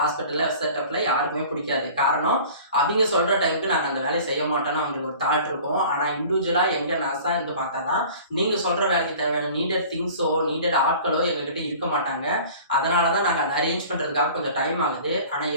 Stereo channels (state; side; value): inverted; both; correlation -0.44